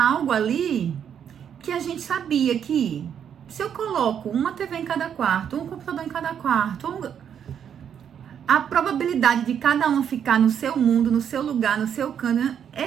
algo ali que a gente sabia que se eu coloco uma TV em cada quarto, um computador em cada quarto, a probabilidade de cada um ficar no seu mundo, no seu lugar, no seu canto,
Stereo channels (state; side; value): quieter; left; 8.5 dB